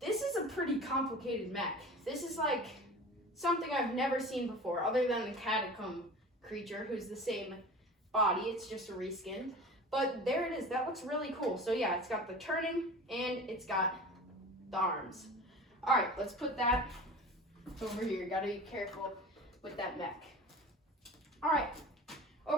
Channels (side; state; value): both; normal; correlation 0.37